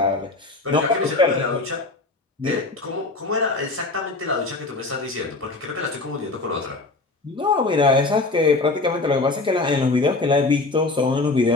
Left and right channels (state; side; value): quieter; right; 3.3 dB